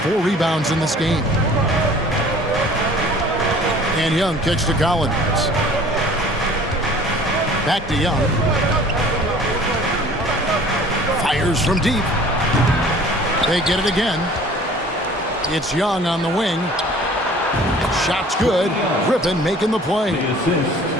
rebounds in this game. And Young kicks to Collins. Back to Young. Fires from deep. They get it again. It's Young on the wing. Shot's good. Griffin making the play.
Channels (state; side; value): normal; both; correlation 0.49